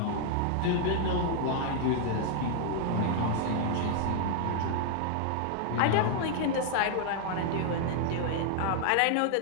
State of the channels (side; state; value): both; different; correlation 0.00